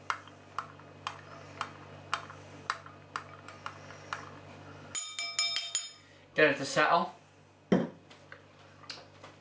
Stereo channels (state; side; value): identical; both; correlation 1.00